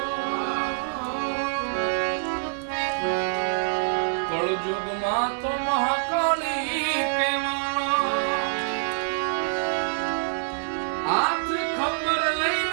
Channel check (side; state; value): left; silent; 57 dB below the other